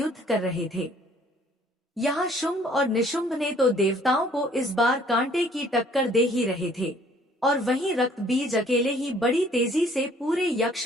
कर रहे थे। यहाँ शुंभ और निशुंभ ने तो देवताओं को इस बार कांटे की टक्कर दे ही रहे थे और वहीं रक्त बीज अकेले ही बड़ी तेजी से पूरे यक्ष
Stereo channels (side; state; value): both; normal; correlation 0.58